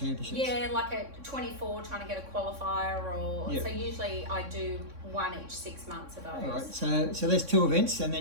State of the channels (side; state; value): left; late; 3.6 ms